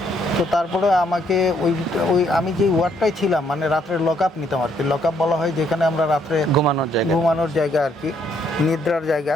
তো তারপরে আমাকে আমি যে ওয়ার্ডটাই ছিলাম, মানে রাত্রে লক আপ নিতাম আর কি। লক আপ বলা হয় যেখানে আমরা রাত্রে ঘুমানোর জায়গা আর কি, নিদ্রার জায়গা।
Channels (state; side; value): normal; both; correlation 0.70